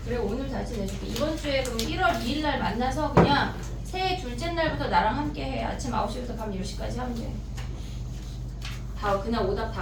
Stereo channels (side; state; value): both; identical; correlation 1.00